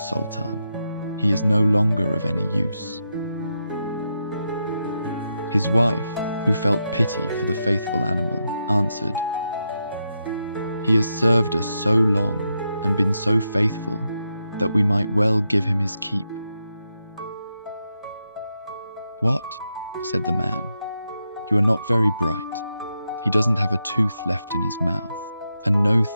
He is no longer of any use." His wife, who felt pity for the faithful animal, answered, "He has served us so long and been so faithful that we might well give him his keep." "What?" said the man. "You are not very bright. He doesn't have a tooth left in his mouth, and no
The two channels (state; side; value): inverted; both; correlation -0.85